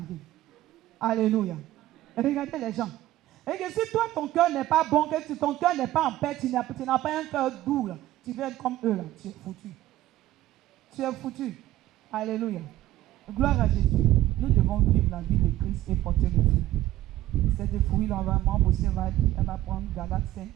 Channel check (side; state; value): left; quieter; 14.8 dB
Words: Alléluia. Regardez les gens. Et que si toi ton cœur n'est pas bon, que ton cœur n'est pas en paix, tu n'as pas un cœur doux là, tu veux être comme eux là, tu es foutu. Tu es foutu. Alléluia. Gloire à Jésus. Nous devons vivre la vie de Christ et porter le fruit. Cette fruit là, vraiment, elle va prendre Galates 5.